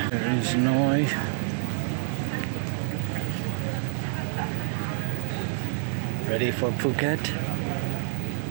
Noy. Ready for Phuket?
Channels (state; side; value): silent; left; digital silence